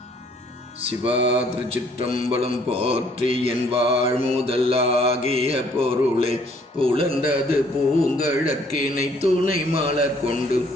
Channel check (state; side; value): normal; both; correlation 0.62